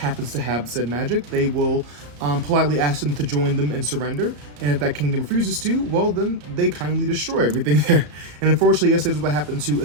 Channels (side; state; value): left; late; 34 ms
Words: to have said magic, they will politely ask them to join them and surrender, and if that kingdom refuses to, well, then they kindly destroy everything there. And unfortunately, yes, that is what happened to